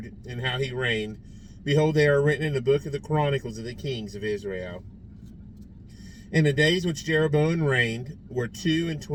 and how he reigned, behold, they are written in the book of the Chronicles of the kings of Israel. And the days which Jeroboam reigned were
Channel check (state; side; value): identical; both; correlation 1.00